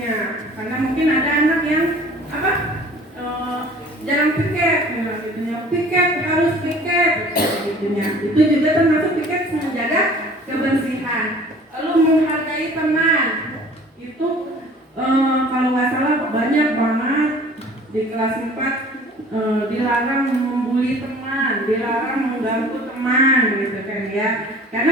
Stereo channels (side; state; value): both; normal; correlation 0.48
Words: karena mungkin ada anak yang jarang piket, piket harus piket, gitunya. Itu juga termasuk piket menjaga kebersihan. Lalu menghargai teman, itu kalau nggak salah banyak banget di kelas 4 dilarang membuli teman, dilarang mengganggu teman, gitu kan ya. Karena